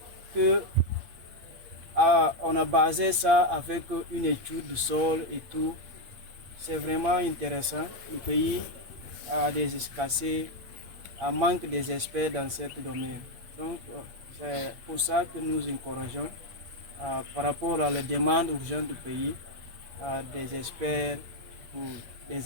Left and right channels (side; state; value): left; late; 8.6 ms